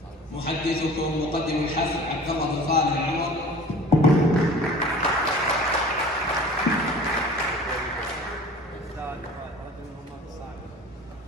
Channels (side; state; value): both; normal; correlation 0.43